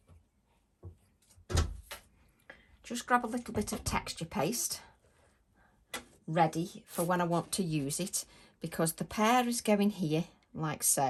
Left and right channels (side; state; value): both; identical; correlation 1.00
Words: Just grab a little bit of texture paste ready for when I want to use it, because the pear is going here like